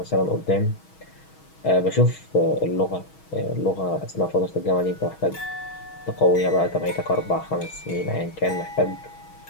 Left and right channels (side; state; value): right; late; 6.3 ms